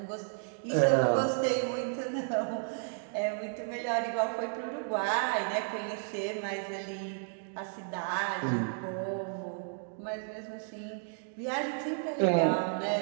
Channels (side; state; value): left; silent; 56 dB below the other